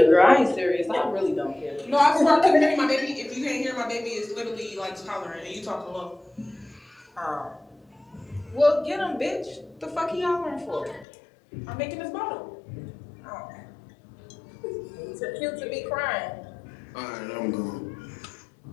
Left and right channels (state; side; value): drops out; right; at 11.1 s